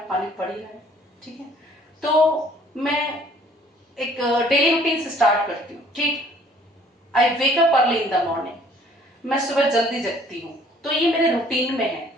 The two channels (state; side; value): normal; both; correlation 0.57